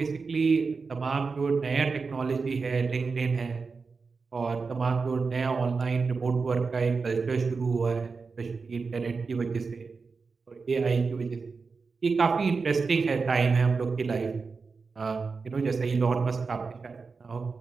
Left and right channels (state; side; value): quieter; left; 4.6 dB